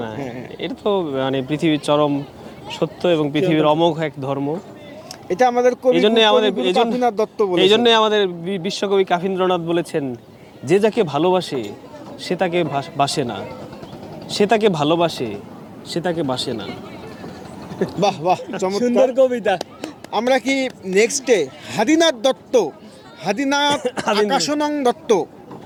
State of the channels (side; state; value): both; identical; correlation 1.00